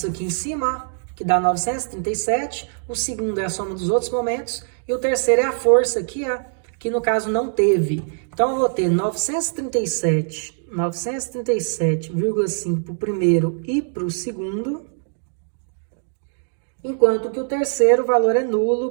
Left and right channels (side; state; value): left; silent; digital silence